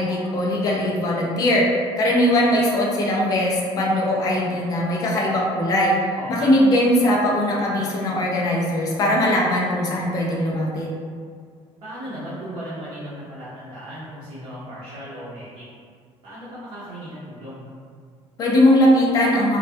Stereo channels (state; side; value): normal; both; correlation 0.54